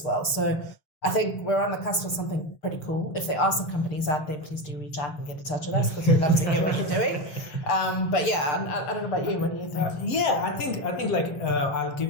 well. So I think we're on the cusp of something pretty cool. If there are some companies out there, please do reach out and get in touch with us because we'd love to hear what you're doing. But yeah, I don't know about you. What do you think? I think like I'll give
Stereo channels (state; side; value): late; right; 4.2 ms